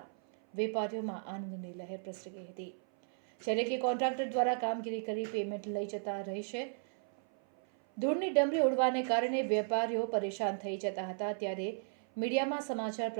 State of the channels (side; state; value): left; silent; 54 dB below the other